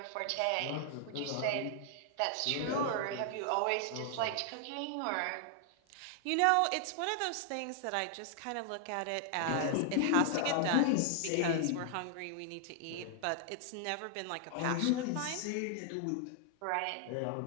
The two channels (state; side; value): different; both; correlation 0.00